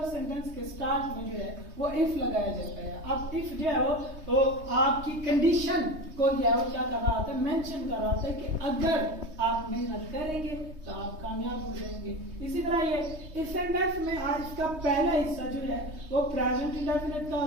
सेंटेंस के स्टार्ट में जो है वो इफ लगाया जाता है। अब इफ जो है वो आपकी कंडीशन को जो है वो क्या कर रहा होता है, मेंशन कर रहा होता है कि अगर आप मेहनत करेंगे तो आप कामयाब हो जाएंगे। इसी तरह ये इस सेंटेंस में आज इसका पहला हिस्सा जो है वो प्रेजेंट इंडेफिनिट का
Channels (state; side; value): late; left; 3.2 ms